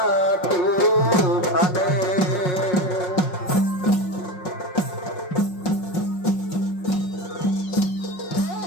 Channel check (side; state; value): right; late; 5.5 ms